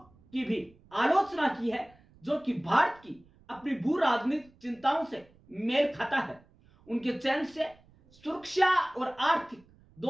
की भी आलोचना की है, जो कि भारत की अपनी भू राजनीतिक चिंताओं से मेल खाता है। उनके चयन से सुरक्षा और आर्थिक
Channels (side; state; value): right; noise; rumble, 29 dB below the sound